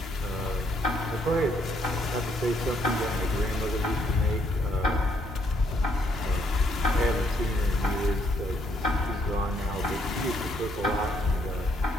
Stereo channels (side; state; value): both; normal; correlation 0.71